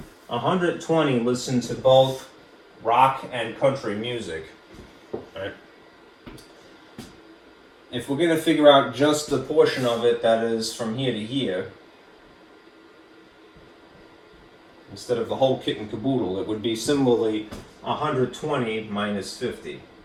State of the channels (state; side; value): identical; both; correlation 1.00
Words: 120 listen to both rock and country music, right? If we're going to figure out just the portion of it that is from here to here, instead of the whole kit and caboodle, it would be similarly 120 minus 50,